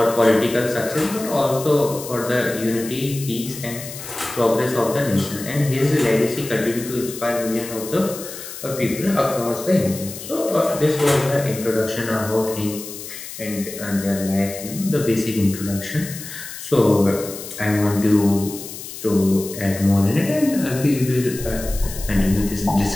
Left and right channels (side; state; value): left; noise; hiss, 11 dB below the sound